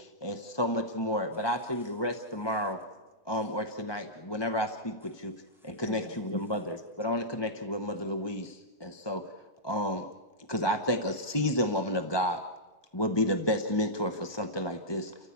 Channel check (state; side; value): late; right; 1.2 ms